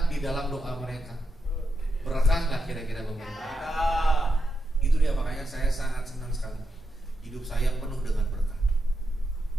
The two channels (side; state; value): both; normal; correlation 0.85